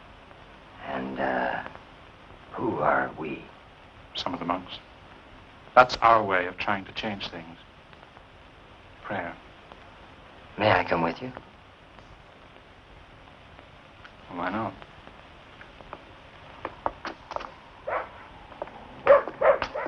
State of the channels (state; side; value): identical; both; correlation 1.00